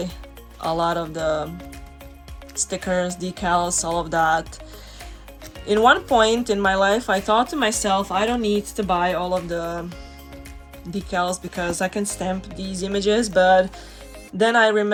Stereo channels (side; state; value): both; identical; correlation 1.00